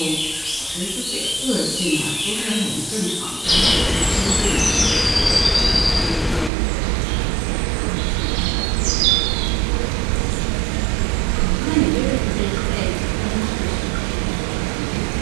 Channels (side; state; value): left; drops out; at 6.5 s